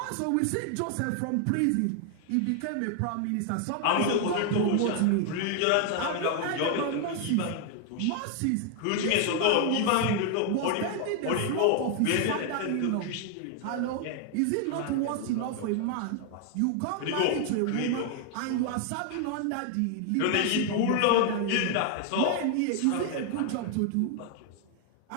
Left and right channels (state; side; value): different; both; correlation 0.00